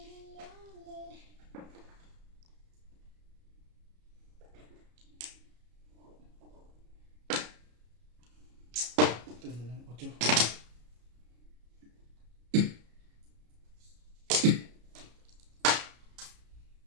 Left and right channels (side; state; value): left; late; 33 ms